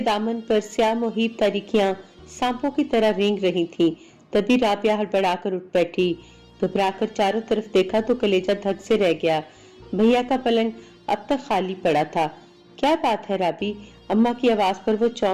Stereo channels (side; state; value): both; identical; correlation 1.00